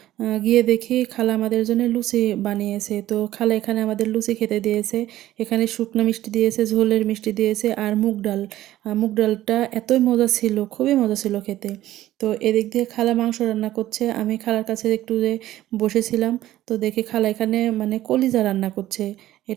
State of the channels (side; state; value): left; quieter; 14.3 dB